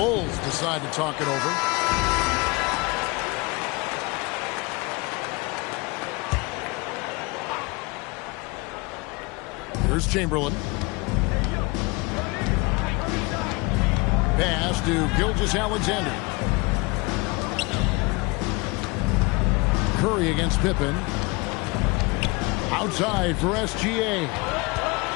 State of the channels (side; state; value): right; quieter; 26.3 dB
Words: decide to talk it over. Here's Chamberlain. Pass to Gilgeous-Alexander. Curry against Pippen. Outside for SGA.